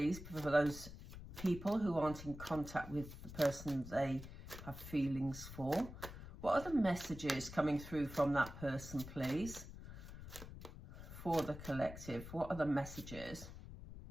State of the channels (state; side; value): noise; left; rumble, 12 dB below the sound